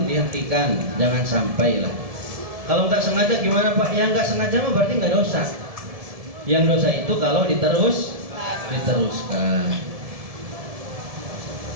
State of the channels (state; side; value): late; left; 1.7 ms